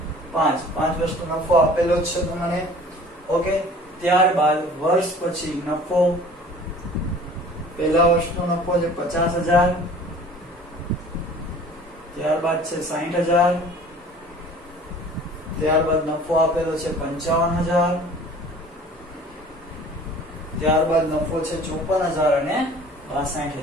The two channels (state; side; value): normal; both; correlation 0.47